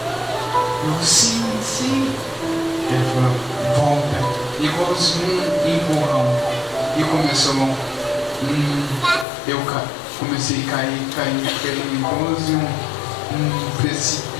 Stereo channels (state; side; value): drops out; right; at 9.2 s